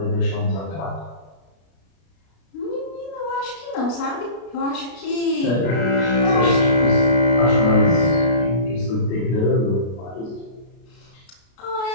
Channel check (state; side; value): late; right; 32 ms